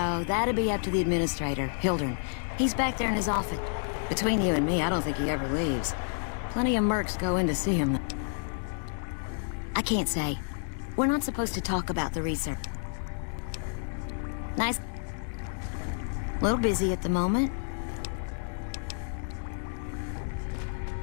that'd be up to the administrator, Hildern. He's back there in his office. Between you and me, I don't think he ever leaves. Plenty of mercs go in to see him. I can't say. We're not supposed to talk about the research. Nice. Little busy at the moment.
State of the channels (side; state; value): right; silent; digital silence